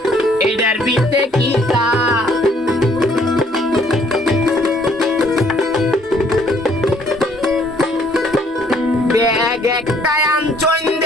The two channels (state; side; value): normal; both; correlation 0.63